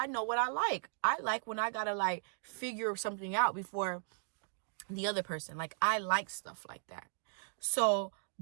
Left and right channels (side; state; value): left; silent; digital silence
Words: know what I like. I like when I gotta like figure something out before the other person. Like, I like stuff like that. So